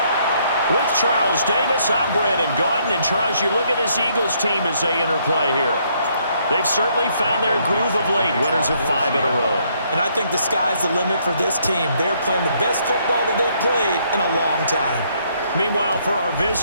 With Charles Davis, I'm Brandon Gaudin. And Charles, you look at this Eagles team as they interplay here. They've certainly found their groove of late, winners of 5 in a row. And I think the sky's the limit for this team. They're playing the best football that they've played in a long time. Meanwhile, for our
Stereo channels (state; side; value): inverted; both; correlation -0.69